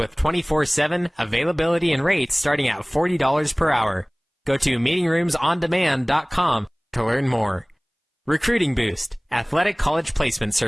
24/7 availability and rates starting at $40 per hour. Go to meetingroomsondemand.com to learn more. Recruiting Boost, Athletic College Placement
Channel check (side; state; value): both; identical; correlation 1.00